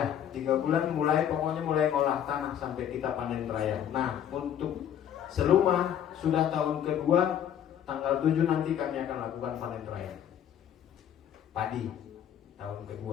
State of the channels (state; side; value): quieter; right; 9.8 dB